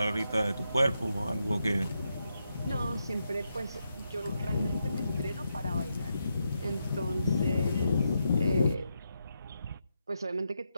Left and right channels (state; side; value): inverted; both; correlation -0.83